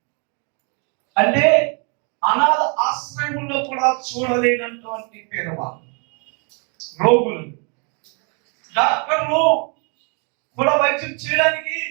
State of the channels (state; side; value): quieter; left; 36.5 dB